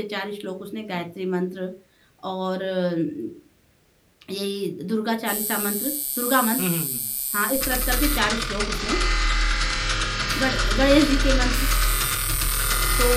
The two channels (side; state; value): both; identical; correlation 1.00